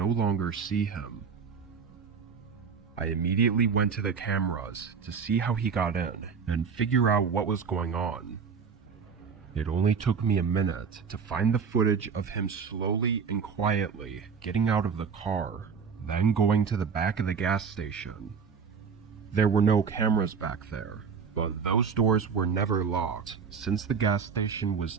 longer see him. I immediately went to the cameras to see how he got in and figure out what was going on. It only took me a minute to find the footage of him slowly and quietly getting out of the car, then going to the back of the gas station. There were no cameras back there, but those doors were never locked, since the gas station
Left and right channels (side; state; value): left; quieter; 6.0 dB